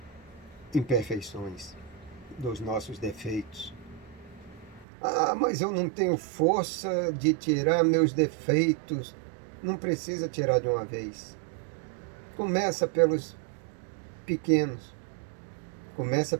imperfeições, dos nossos defeitos. Ah, mas eu não tenho força de tirar meus defeitos. Não precisa tirar de uma vez. Começa pelos pequenos. Começa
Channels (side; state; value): left; drops out; at 4.9 s